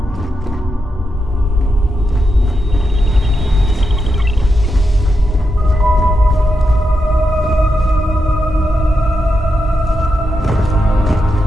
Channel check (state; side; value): normal; both; correlation 0.85